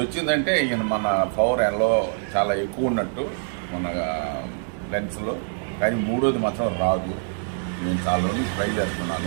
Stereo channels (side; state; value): left; silent; digital silence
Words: వచ్చిందంటే ఈయన మన పవర్ ఎల్లో చాలా ఎక్కువ ఉన్నట్టు మన లెన్స్లో. కానీ మూడోది మాత్రం రాదు. నేను చాలా రోజులు ట్రై